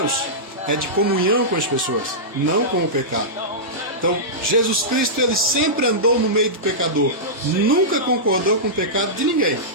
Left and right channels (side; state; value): both; normal; correlation -0.15